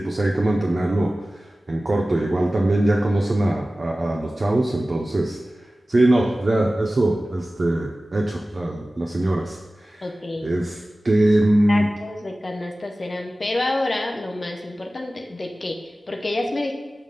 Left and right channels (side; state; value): both; normal; correlation 0.96